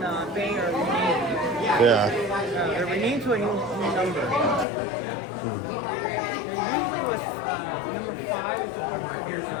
Bay are renamed. Yeah. They're renamed to a new number. There usually was number 5 is supposed to be.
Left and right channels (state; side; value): drops out; right; at 4.7 s